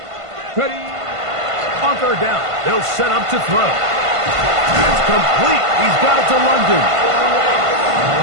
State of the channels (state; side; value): late; left; 1.5 ms